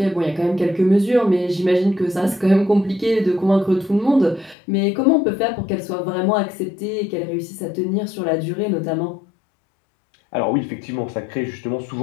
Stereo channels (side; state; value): right; drops out; at 4.5 s